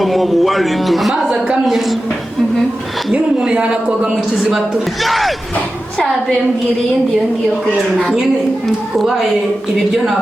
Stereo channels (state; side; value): normal; both; correlation 0.93